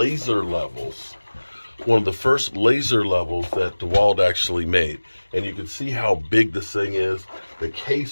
levels that DeWalt actually made. And you can see how big this thing is. The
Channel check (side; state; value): both; inverted; correlation -1.00